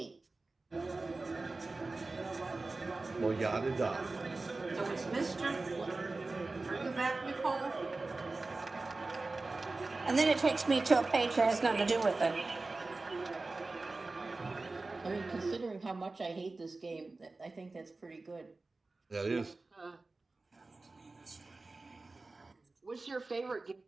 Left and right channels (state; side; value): quieter; left; 3.4 dB